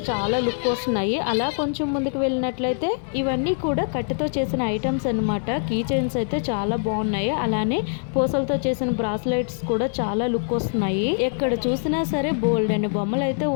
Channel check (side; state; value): right; silent; digital silence